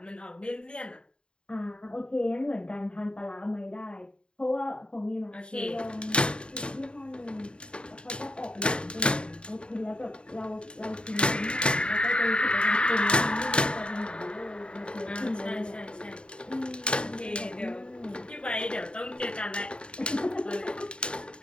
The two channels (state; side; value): late; right; 0.053 ms